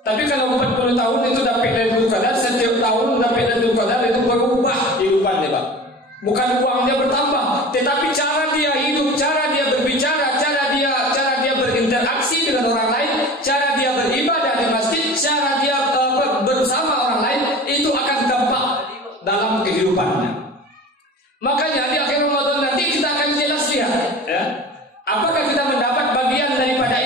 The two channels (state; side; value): normal; both; correlation 0.38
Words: Tapi kalau 40 tahun itu dapat Lailatul Qadar, setiap tahun dapat Lailatul Qadar, itu berubah kehidupannya, Pak. Bukan uangnya bertambah, tetapi cara dia hidup, cara dia berbicara, cara dia berinteraksi dengan orang lain, cara dia beribadah di masjid, cara dia bersama orang lain, itu akan dampak dalam kehidupannya. Makanya di akhir Ramadan nanti kita akan jelas lihat, ya, apakah kita mendapat bagian daripada